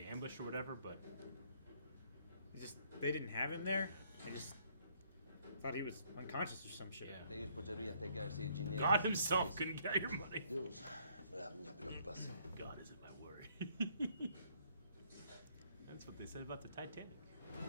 ambush or whatever, but... They didn't have him there? I just thought he was unconscious or some shit. Yeah. God himself couldn't get your money. God isn't my worry. That's what they said about the Titanic.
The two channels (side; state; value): both; inverted; correlation -0.66